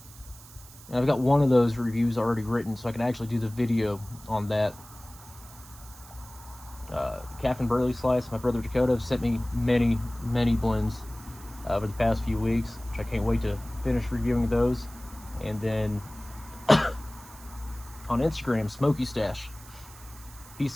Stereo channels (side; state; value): right; noise; hiss, 20 dB below the sound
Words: And I've got one of those reviews already written, so I can actually do the video on that. Captain Burley Slice, my brother Dakota, sent me many blends over the past few weeks, which I can't wait to finish reviewing those. And then on Instagram, Smoky Stash, he